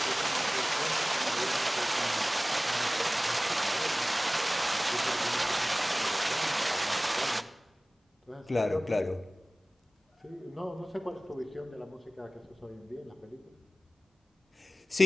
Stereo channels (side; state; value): both; normal; correlation 0.98